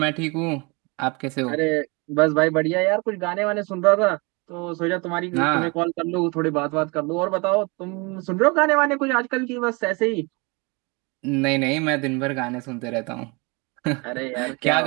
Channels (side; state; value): left; quieter; 28.8 dB